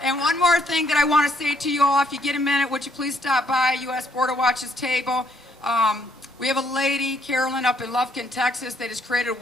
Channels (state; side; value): normal; both; correlation 0.70